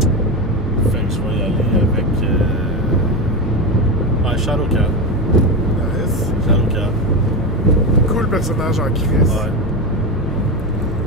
Fait que je vais y aller avec Shadowcat. Nice. Shadowcat. Cool personnage en crise. Ouais.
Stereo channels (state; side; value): normal; both; correlation 0.16